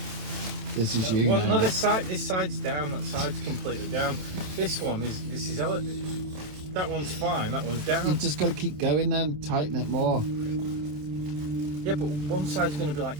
This is you Well, now. no, this side's down. That side's completely down. This one is. This is. That one's fine. That one's down. You've just got to keep going then. Tighten it more. Yeah, but one side's going to be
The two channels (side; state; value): left; late; 27 ms